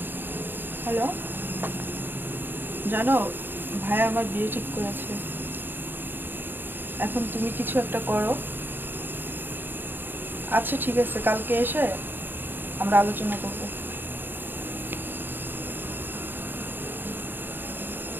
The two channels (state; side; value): late; left; 0.095 ms